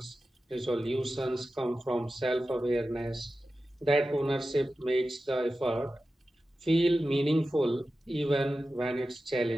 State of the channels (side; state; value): both; normal; correlation 0.93